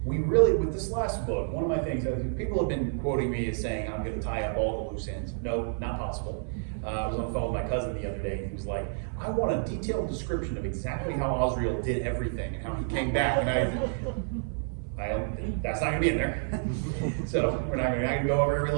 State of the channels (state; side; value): silent; left; 58 dB below the other